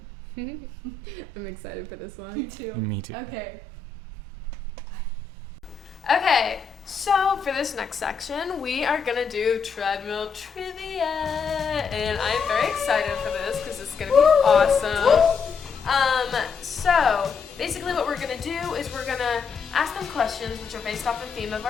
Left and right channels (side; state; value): right; quieter; 5.6 dB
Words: I'm excited for this Me one. too. Me too. Okay. Okay, so for this next section, we are gonna do treadmill trivia, and I'm very excited for this because it's gonna be awesome. So basically, what we're gonna do is we're gonna ask them questions which are based off the theme of